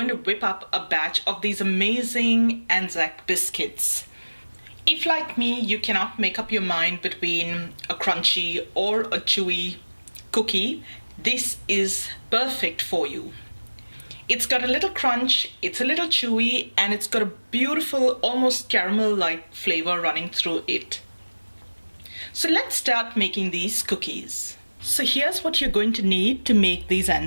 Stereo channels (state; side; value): inverted; both; correlation -1.00